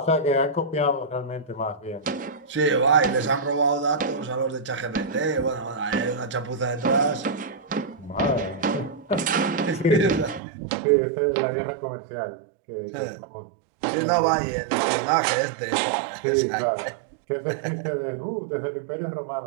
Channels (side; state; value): left; drops out; at 10.4 s